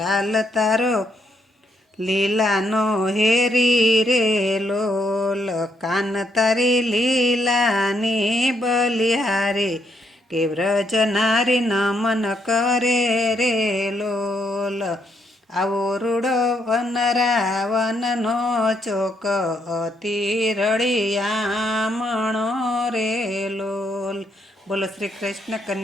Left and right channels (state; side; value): normal; both; correlation 0.75